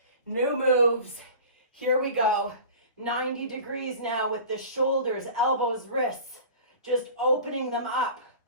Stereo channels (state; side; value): inverted; both; correlation -0.39